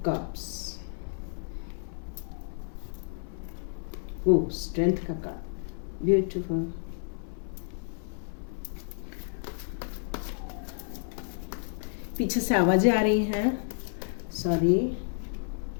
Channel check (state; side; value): silent; right; 57 dB below the other